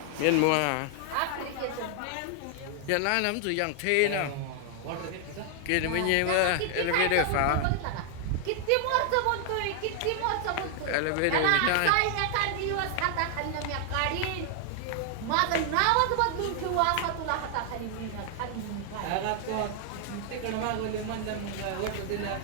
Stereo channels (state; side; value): different; both; correlation 0.00